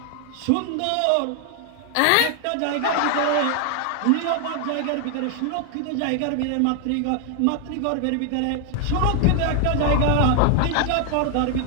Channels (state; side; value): different; both; correlation 0.00